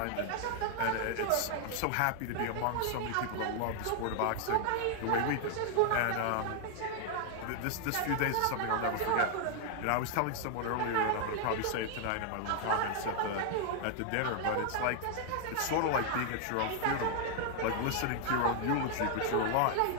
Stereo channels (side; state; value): both; different; correlation 0.00